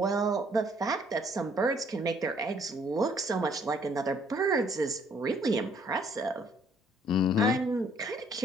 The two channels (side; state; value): both; normal; correlation 0.63